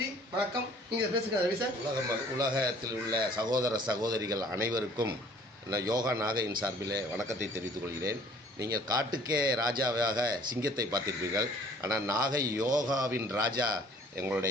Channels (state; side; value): normal; both; correlation 0.54